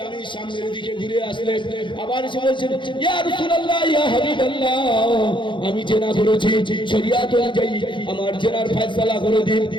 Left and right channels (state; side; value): late; right; 0.23 ms